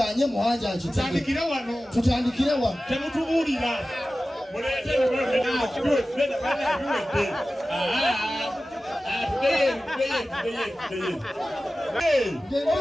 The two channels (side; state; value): both; normal; correlation 0.95